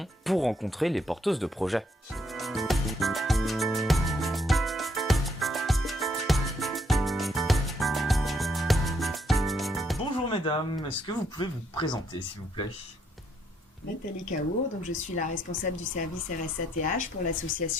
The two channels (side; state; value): both; normal; correlation 0.72